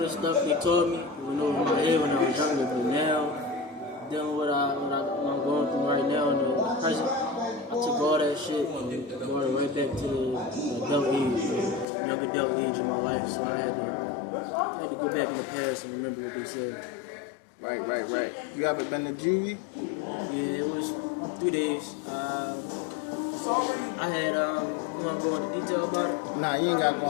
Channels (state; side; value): drops out; right; at 11.9 s